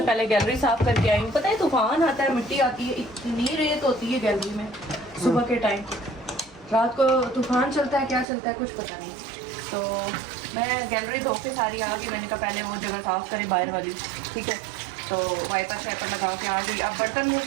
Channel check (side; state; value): left; drops out; at 8.2 s